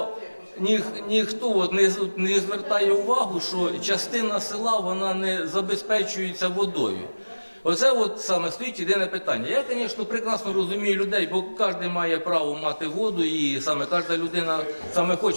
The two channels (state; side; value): inverted; both; correlation -1.00